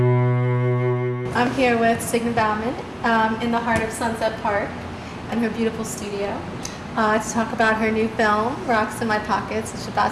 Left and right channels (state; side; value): identical; both; correlation 1.00